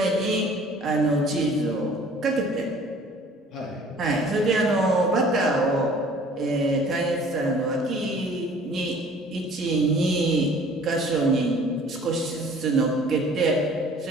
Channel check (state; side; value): normal; both; correlation 0.51